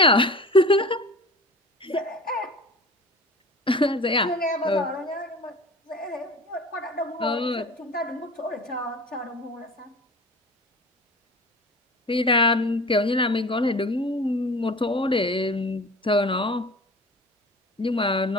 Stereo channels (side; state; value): both; normal; correlation 0.38